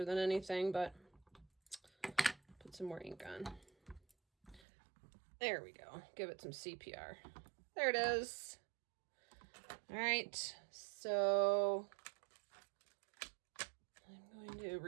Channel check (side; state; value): left; drops out; at 4.6 s